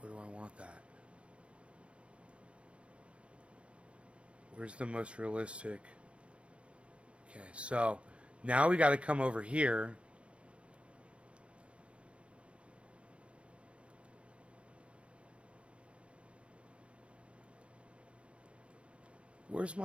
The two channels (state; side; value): late; left; 0.060 ms